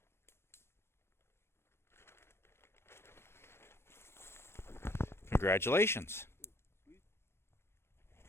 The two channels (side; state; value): right; late; 0.12 ms